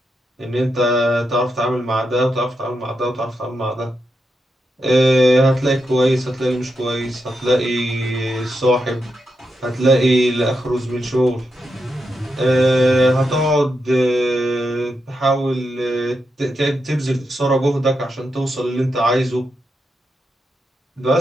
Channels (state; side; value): normal; both; correlation 0.85